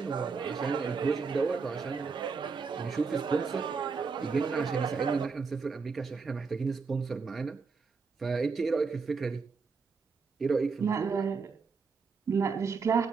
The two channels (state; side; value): quieter; left; 5.0 dB